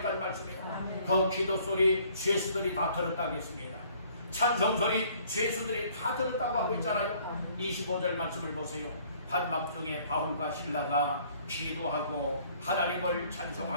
말씀입니다. 그 기도 소리 죄수들이 다 들었다고 했습니다. 찬송 소리 죄수들이 다 들었다고 하고 있잖아요. 25절 말씀을 보세요. 한밤중에 바울과 실라가 기도하고 하나님을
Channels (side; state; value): both; inverted; correlation -0.59